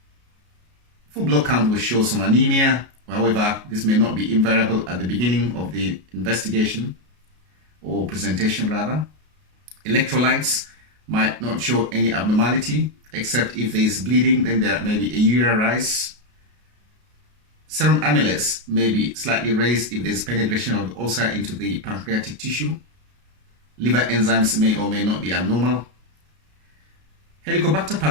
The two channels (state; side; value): late; left; 33 ms